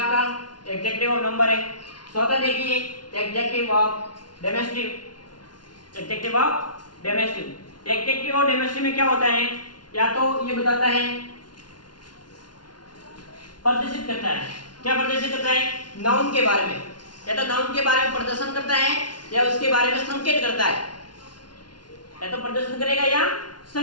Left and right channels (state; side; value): late; right; 0.70 ms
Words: एडजेक्टिव ऑफ नंबर है। चौथा देखिए adjective of demonstrative. Adjective of demonstrative. Adjective of demonstrative में क्या होता है, या तो ये बताता है, प्रदर्शित करता है। क्या प्रदर्शित करता है? नाउन के बारे में, या तो नाउन के बारे में प्रदर्शन करता है या उसके बारे में संकेत करता है। या तो प्रदर्शन करेगा या